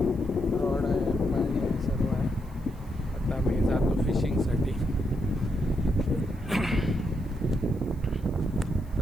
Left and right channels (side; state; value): right; noise; hiss, 29 dB below the sound